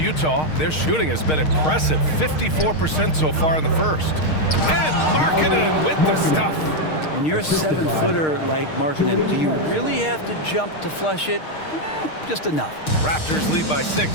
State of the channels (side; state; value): right; late; 6.5 ms